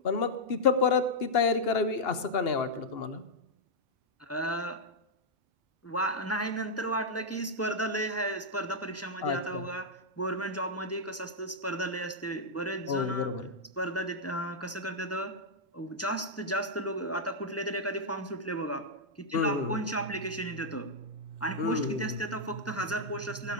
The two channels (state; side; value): normal; both; correlation -0.05